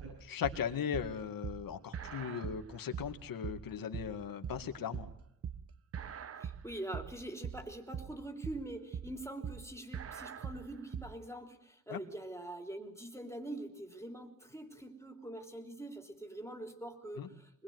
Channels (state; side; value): normal; both; correlation 0.21